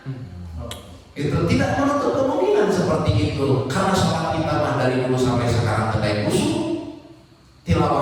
Itu tidak menutup kemungkinan seperti itu. Karena sholat kita mah dari dulu sampai sekarang tidak kusuk.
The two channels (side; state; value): both; identical; correlation 1.00